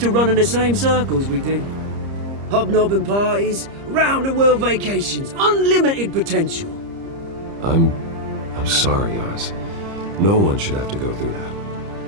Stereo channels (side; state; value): left; late; 30 ms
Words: to run in the same circles we did. Hobnobbing parties, round-the-world vacations, unlimited potential. I'm sorry, Oz. No one should have to go through that.